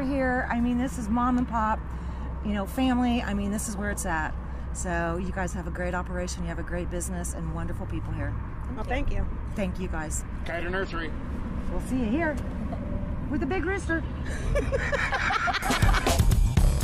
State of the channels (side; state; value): both; identical; correlation 1.00